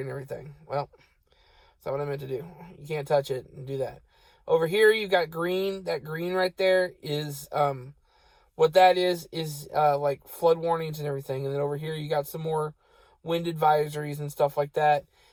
and everything. Well, that's not what I meant to do. You can't touch it and do that. Over here, you've got green. That green right there is, what that is like flood warnings and everything. And then over here, you got some more wind advisories and stuff like that.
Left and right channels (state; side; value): identical; both; correlation 1.00